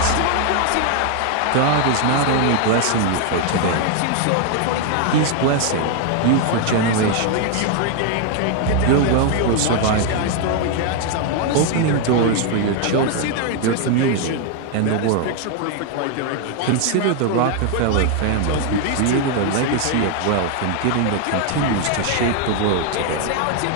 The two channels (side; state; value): both; different; correlation 0.00